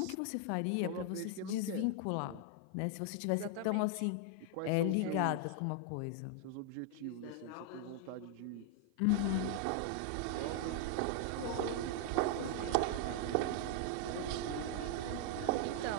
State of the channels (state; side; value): different; both; correlation 0.00